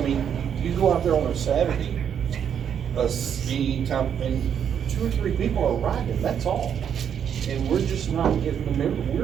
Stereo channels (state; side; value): quieter; left; 8.4 dB